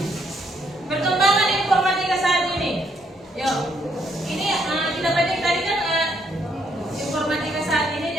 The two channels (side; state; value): both; normal; correlation 0.72